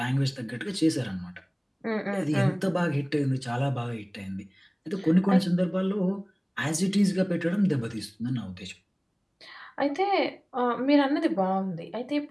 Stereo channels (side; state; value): both; identical; correlation 1.00